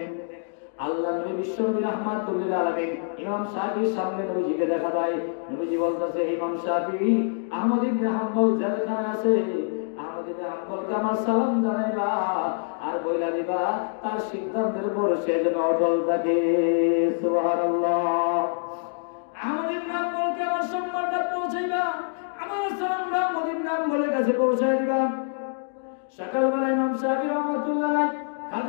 আল্লাহ নবী বিশ্বনবী রাহমাতুল্লিল আলামিন ইমাম শাফির সামনে নবীজিকে দেখা দেয়। নবীজি বলতেছে, ইমাম শাফি আহমদ ইবনে হাম্বল জেলখানায় আছে, আহমদ ইবনে হাম্বলকে আমার সালাম জানাইবা আর বইলা দিবা তার সিদ্ধান্তের উপর সে যেন অটল থাকে। সুবহানাল্লাহ। আহমদ ইবনে হাম্বলকে আমার সম্মানটা পৌঁছাইবা, আমার সালামটা আহমদ ইবনে হাম্বলের কাছে পৌঁছাই দিবা। সকালবেলা ইমাম শাফি রাহমাতুল্লাহ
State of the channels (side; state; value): right; silent; digital silence